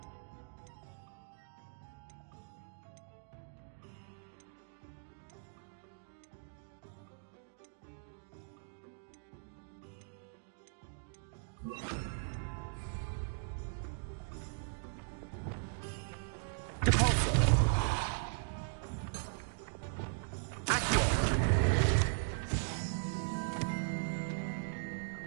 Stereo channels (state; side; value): silent; left; digital silence